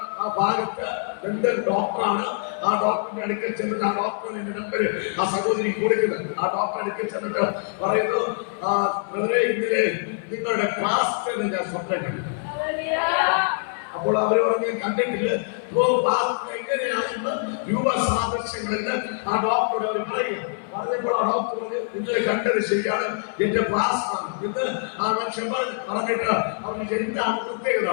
ആ ഭാഗത്ത് ഡെന്റൽ ഡോക്ടറാണ്. ആ ഡോക്ടറിന്റെ അടുക്കൽ ചെന്നിട്ട് ആ ഡോക്ടറിന്റെ നമ്പർ ആ സഹോദരി കൊടുക്കുന്നത്. ആ ഡോക്ടറെ അടുക്കൽ ചെന്നിട്ട് പറയുന്നു, ഇന്നലെ നിങ്ങളുടെ ക്ലാസ് ഞാൻ സ്വപ്നം കണ്ടു. അപ്പോൾ അവര് പറഞ്ഞു, ഞാൻ കണ്ടിട്ടില്ല. എങ്ങനെയാണെന്ന് രൂപസാദൃശ്യങ്ങളിൽ ആ ഡോക്ടറോട് അവർ പറഞ്ഞപ്പോൾ ആ ഡോക്ടർ പറഞ്ഞു, നിങ്ങൾ കണ്ടത് ശരിയാണ്, എന്റെ പ്ലാസ്മാണ് ഇന്ന് ആ മനുഷ്യൻ പറഞ്ഞിട്ട് അവർക്ക് എന്താണ് പ്രത്യേകത.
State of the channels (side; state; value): right; silent; 62 dB below the other